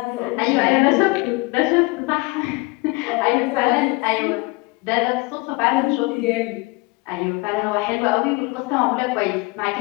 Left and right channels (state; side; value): quieter; right; 25.6 dB